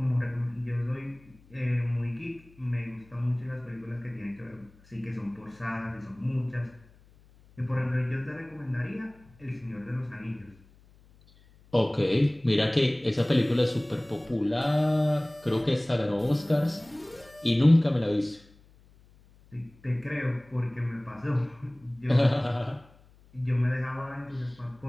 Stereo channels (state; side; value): noise; left; hum, 27 dB below the sound